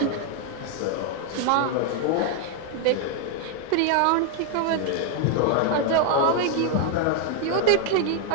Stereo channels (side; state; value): both; different; correlation 0.01